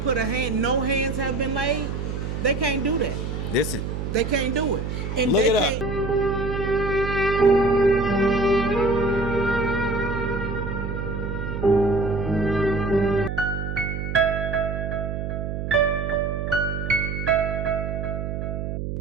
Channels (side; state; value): right; noise; hum, 4 dB below the sound